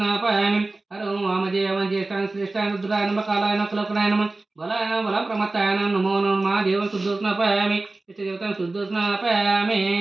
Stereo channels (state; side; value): quieter; left; 3.2 dB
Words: ಹರೋಂ ವಾಮದೇವ ಜ್ಯೇಷ್ಠಾನ ಶ್ರೇಷ್ಠಾನ ರುದ್ರಾಯ ನಮ ಕಾಲಾಯ ನಮ ಕುಲಕುನಾಯ ನಮ ಬಲಾಯ ನಮ ಬಲ ಪ್ರಮತ್ತಾಯ ನಮೋ ನಮ ಮಹಾದೇವ ಶುದ್ಧ ಸ್ನಾಪಾಯಾಮಿ. ಇಷ್ಟ ದೇವತಾ ಶುದ್ಧ ಸ್ನಾಪಾಯಾಮಿ.